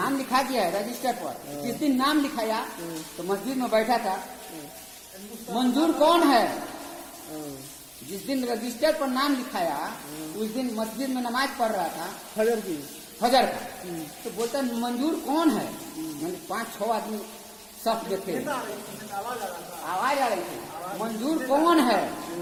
लिखा गया है रजिस्टर पर। जिस दिन नाम लिखाया तो मस्जिद में बैठा था, मंजूर कौन है, जिस दिन रजिस्टर पर नाम लिखाया उस दिन मस्जिद में नमाज पढ़ रहा था, फजर की, फजर का। तो बोलता मंजूर कौन है, मैंने 5-6 आदमी सब देखे, आवाज आ रही थी, मंजूर कौन है,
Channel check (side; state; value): both; identical; correlation 1.00